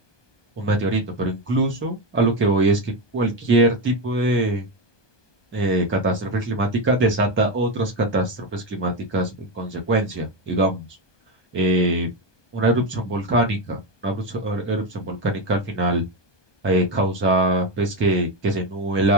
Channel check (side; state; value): right; late; 1.2 ms